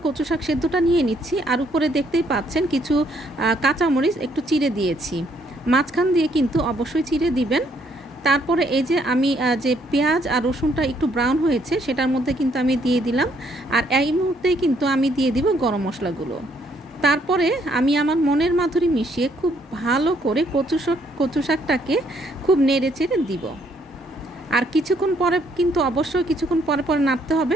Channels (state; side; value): normal; both; correlation 0.69